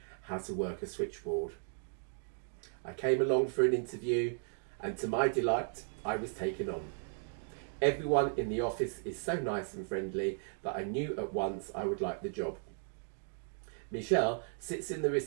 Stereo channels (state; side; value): silent; left; digital silence